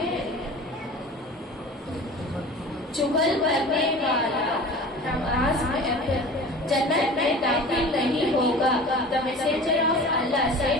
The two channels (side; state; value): both; normal; correlation 0.39